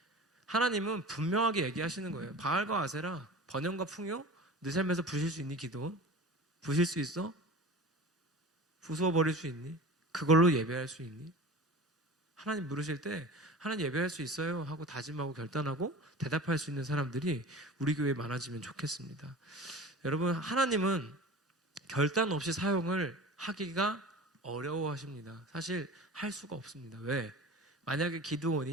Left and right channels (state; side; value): normal; both; correlation 0.36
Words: 하나님은 분명하게 얘기하시는 거예요. 바알과 아세라, 번영과 풍요, 내 삶에서 부실 수 있니 기도원? 부실 수 있어? 부수어 버릴 수 있니? 그걸로 예배할 수 있니? 하나님 물으실 때 하나님 예배할 수 있어요 하고 다짐하고 결단하고 대답할 수 있는 사람들이 우리 교회에 많아지면 좋겠습니다. 여러분 하나님은 결단 없이 사용을 하기가 어려워하십니다. 사실 할 수가 없습니다. 왜? 만약에